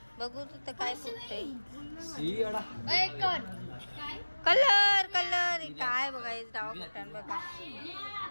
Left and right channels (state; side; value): inverted; both; correlation -1.00